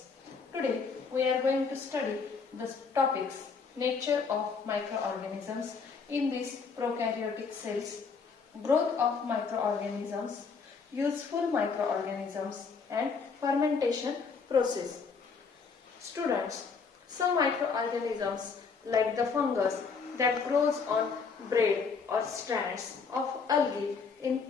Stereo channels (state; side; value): quieter; right; 5.2 dB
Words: Today, we are going to study the topics nature of microorganisms in these prokaryotic cells, growth of microorganisms, useful microorganisms, and fermentation process. Students, some microorganisms like the fungus that grows on braid or strands of algae in